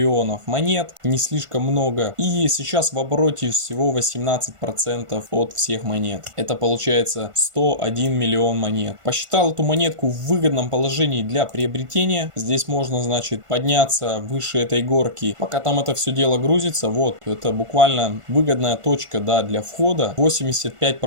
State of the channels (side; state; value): left; late; 1.5 ms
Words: монет, не слишком много. И сейчас в обороте всего 18% от всех монет. Это получается 101 миллион монет. Посчитал эту монетку в выгодном положении для приобретения. Здесь можно, значит, подняться выше этой горки. Пока там это все дело грузится, вот, это буквально выгодная точка, да, для входа.